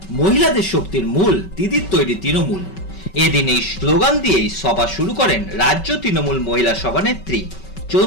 মহিলাদের শক্তির মূল দিদির তৈরি তৃণমূল, এদিন এই স্লোগান দিয়েই সভা শুরু করেন রাজ্য তৃণমূল মহিলা সভানেত্রী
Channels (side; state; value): right; late; 5.3 ms